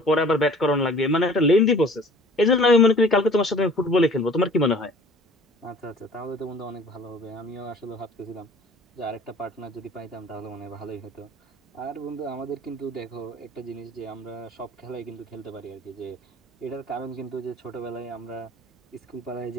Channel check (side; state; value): both; normal; correlation 0.49